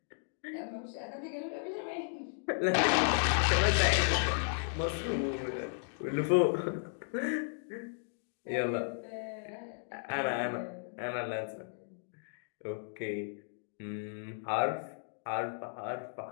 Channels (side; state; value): right; silent; digital silence